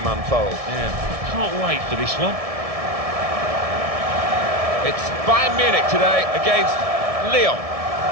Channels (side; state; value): left; late; 1.7 ms